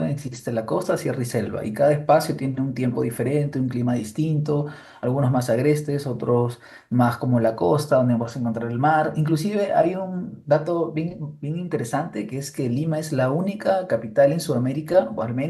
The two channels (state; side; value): identical; both; correlation 1.00